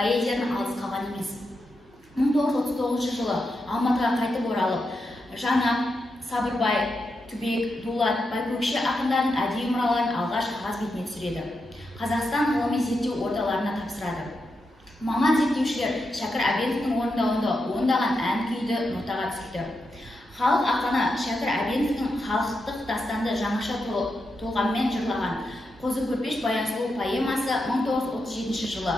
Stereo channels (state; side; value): normal; both; correlation 0.86